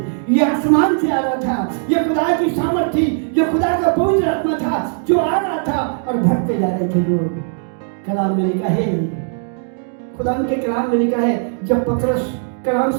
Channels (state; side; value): silent; left; 61 dB below the other